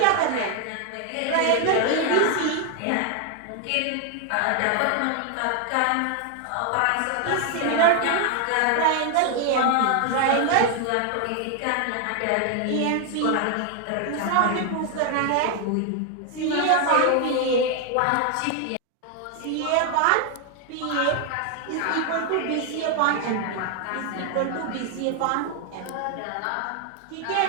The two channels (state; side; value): different; both; correlation 0.00